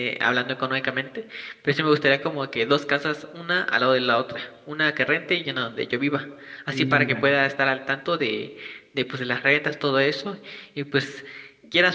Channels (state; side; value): identical; both; correlation 1.00